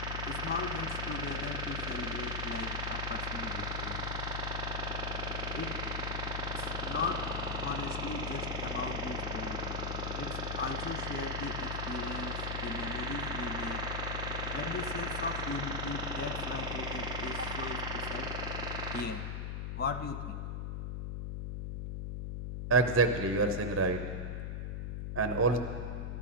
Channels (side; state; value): left; noise; hum, 2 dB below the sound